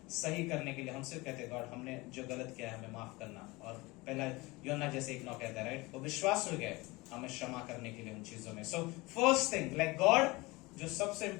सही करने के लिए हम सिर्फ कहते हैं गॉड हमने जो गलत किया है हमें माफ करना। और पहला यूहन्ना जैसे 1:9 कहता है, राइट, वो विश्वास हो गए हमें क्षमा करने के लिए उन चीजों में। So first thing, like God, जो सबसे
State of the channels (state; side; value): quieter; right; 23.0 dB